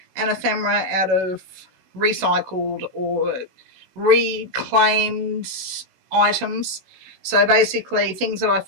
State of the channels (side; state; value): left; late; 16 ms